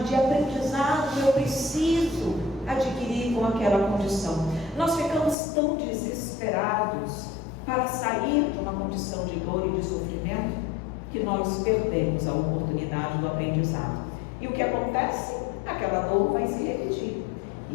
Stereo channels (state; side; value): drops out; right; at 5.4 s